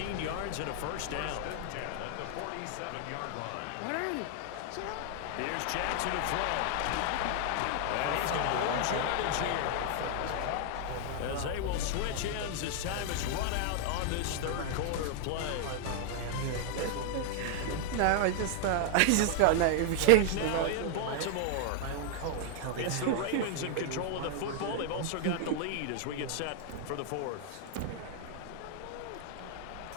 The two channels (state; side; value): different; both; correlation 0.00